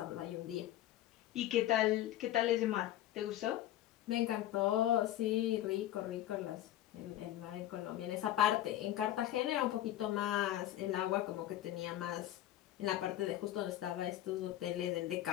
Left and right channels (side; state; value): right; quieter; 13.3 dB